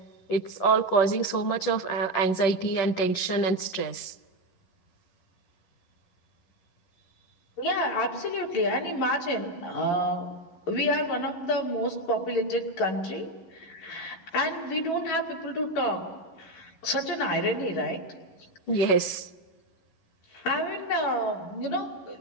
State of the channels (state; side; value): late; right; 11 ms